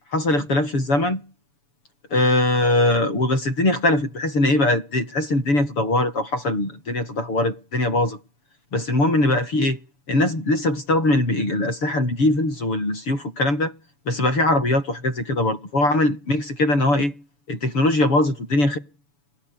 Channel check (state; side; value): late; right; 7.0 ms